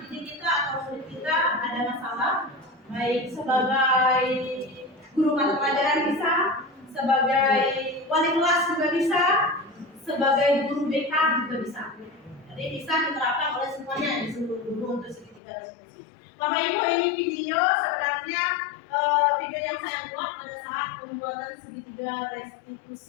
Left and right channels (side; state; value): right; drops out; at 15.4 s